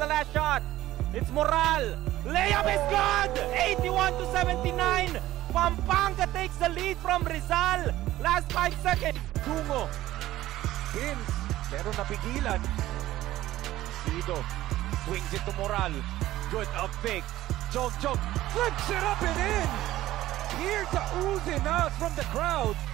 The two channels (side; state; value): left; quieter; 15.2 dB